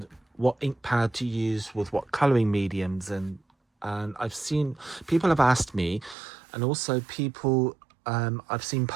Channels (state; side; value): drops out; left; at 6.2 s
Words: what ink pad to use with what colouring mediums, and I've seen people have asked me, and also people I've seen